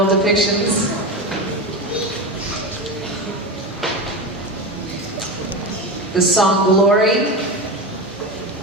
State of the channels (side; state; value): both; normal; correlation 0.21